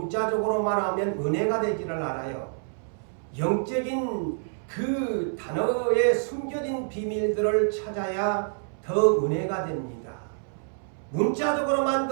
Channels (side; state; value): left; silent; 60 dB below the other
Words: 하면 은혜가 되지를 않아요. 영적인 그 단어에 숨겨진 비밀들을 찾아야 더 은혜가 됩니다. 문자적으로만